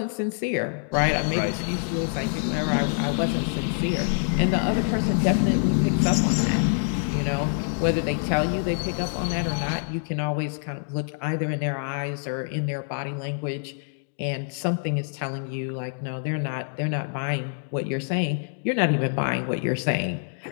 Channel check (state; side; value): silent; right; digital silence